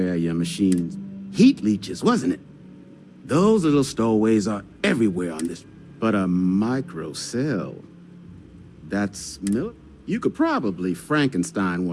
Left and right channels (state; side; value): identical; both; correlation 1.00